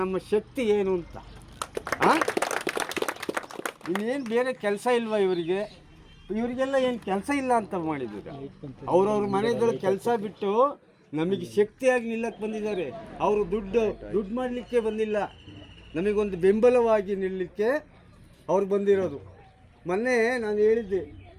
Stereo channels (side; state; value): both; identical; correlation 1.00